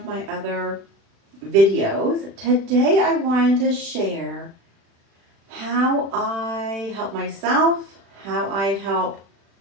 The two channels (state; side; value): late; left; 36 ms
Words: my other videos. Today, I wanted to share how I help myself, how I help